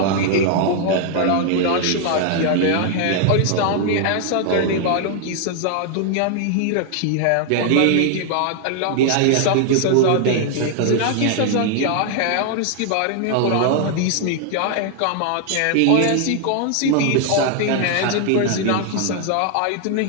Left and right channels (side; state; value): both; different; correlation 0.00